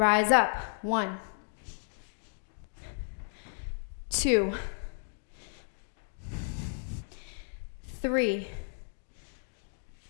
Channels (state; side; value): silent; right; digital silence